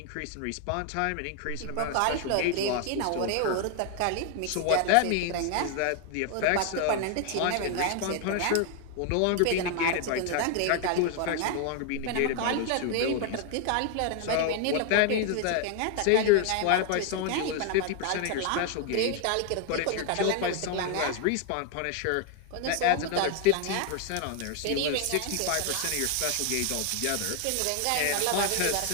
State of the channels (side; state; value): both; different; correlation 0.00